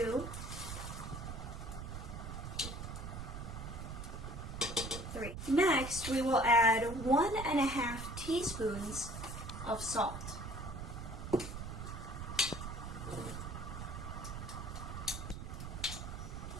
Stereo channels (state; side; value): noise; right; rumble, 7 dB below the sound